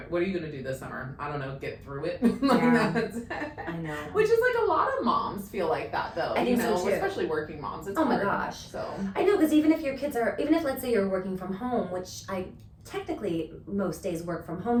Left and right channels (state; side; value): identical; both; correlation 1.00